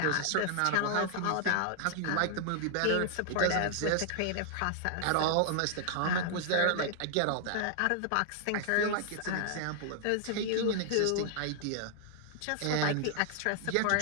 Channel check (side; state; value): both; different; correlation 0.00